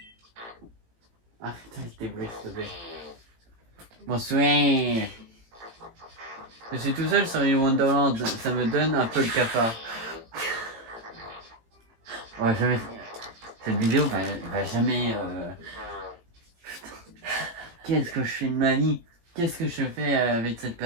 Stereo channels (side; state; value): left; late; 18 ms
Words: Arrête avec tes bruits, s'il te plaît. Bonsoir. Je suis tout seul sur l'île Wonderland, ça me donne un peu le cafard. Ouais, jamais... Cette vidéo va jamais... Putain. Qu'est-ce que je fais de ma vie? Qu'est-ce que je fais avec cette